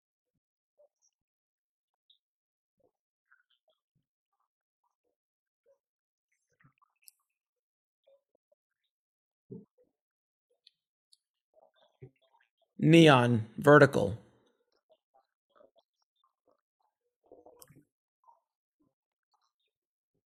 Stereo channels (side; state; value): both; identical; correlation 1.00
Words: the domestic distributors. A lot of them aren't around today that were around 20 years ago or even 10 years ago, but new ones come into being, whether it's A24, who has not been around forever. Neon, Vertical. Gunpowder and Sky. There's always new people coming in. This